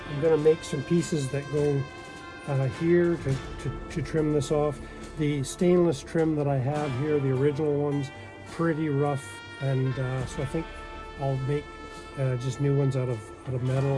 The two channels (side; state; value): both; identical; correlation 1.00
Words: make some pieces that go here to trim this off. The stainless trim that I have here, the original ones, pretty rough, and so I think I'll make just new ones out of metal